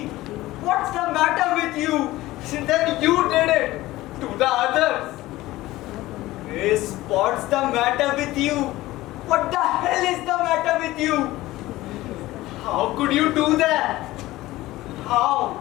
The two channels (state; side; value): quieter; right; 17.4 dB